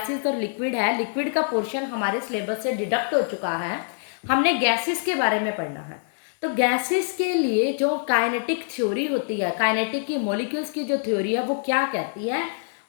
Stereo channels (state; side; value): silent; right; digital silence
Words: और लिक्विड है, लिक्विड का पोर्शन हमारे सिलेबस से डिडक्ट हो चुका है, हमने गैसेस के बारे में पढ़ना है। तो गैसेस के लिए जो काइनेटिक थ्योरी होती है, काइनेटिक की मॉलिक्यूल्स की जो थ्योरी है वो क्या कहती है,